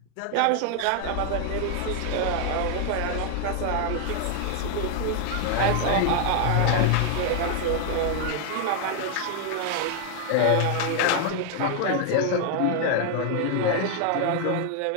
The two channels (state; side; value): different; both; correlation 0.00